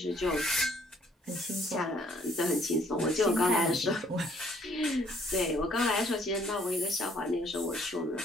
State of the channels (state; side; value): normal; both; correlation 0.63